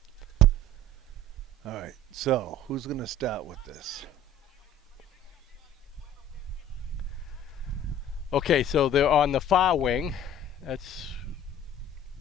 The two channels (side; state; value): both; normal; correlation 0.47